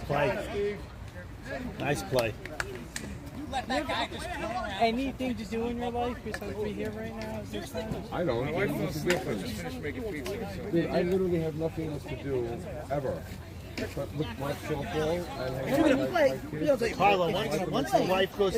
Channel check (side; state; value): both; identical; correlation 1.00